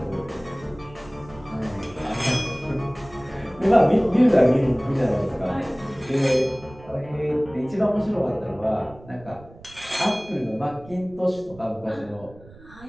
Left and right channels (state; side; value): noise; right; rumble, 21 dB below the sound